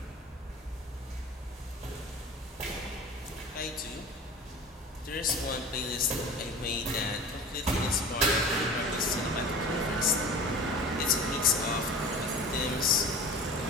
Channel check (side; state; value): both; normal; correlation 0.37